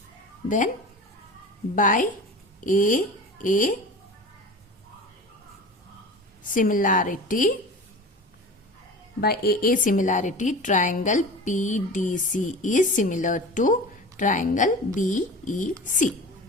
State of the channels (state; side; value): normal; both; correlation 0.35